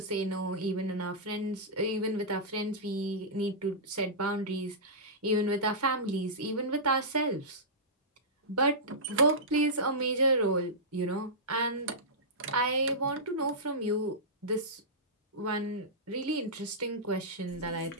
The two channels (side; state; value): both; normal; correlation -0.15